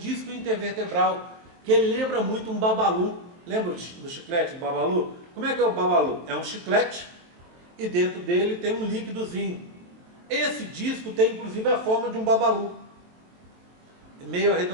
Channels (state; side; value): late; left; 23 ms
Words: disco intervertebral, que ele lembra muito um babalu. Lembra do chiclete do babalu? Como é que é o babalu? É um chiclete e dentro dele tem um líquidozinho. Esse disco tem inclusive a forma de um babalu, meio